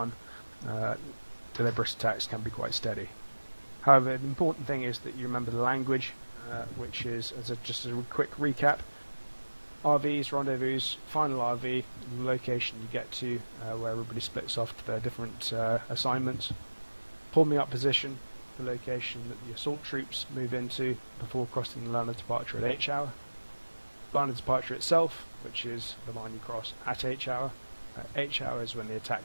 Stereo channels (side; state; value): both; inverted; correlation -1.00